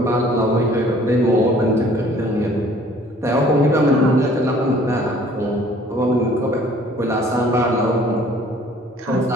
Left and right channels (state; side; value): normal; both; correlation 0.55